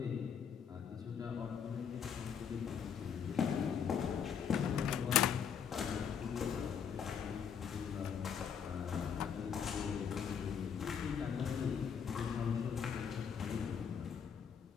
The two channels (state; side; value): quieter; right; 7.4 dB